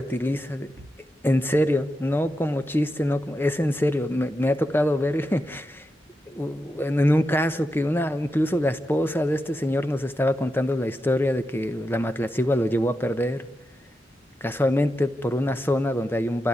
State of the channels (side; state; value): both; normal; correlation 0.88